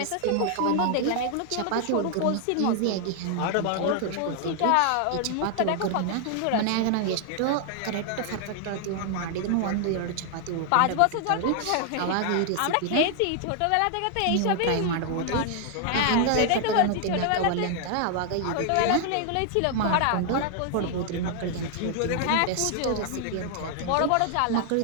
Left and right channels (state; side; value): different; both; correlation 0.00